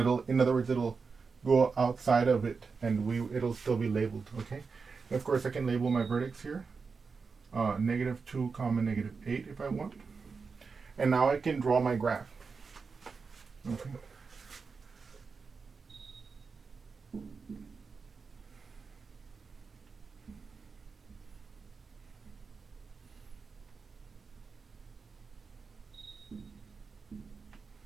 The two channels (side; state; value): left; quieter; 4.9 dB